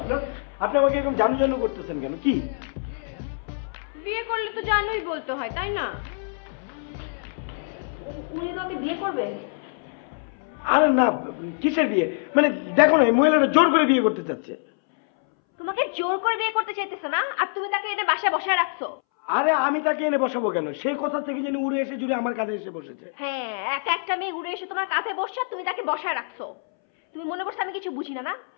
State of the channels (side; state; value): right; silent; 62 dB below the other